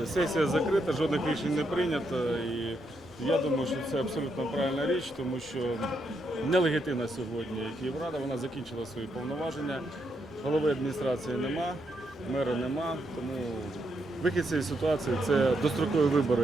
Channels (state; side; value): normal; both; correlation 0.79